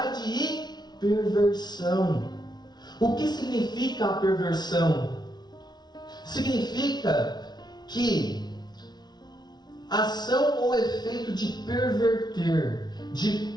e perversão. O que significa a perversão? Significa que ação ou efeito de perverter, de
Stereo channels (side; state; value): right; late; 0.20 ms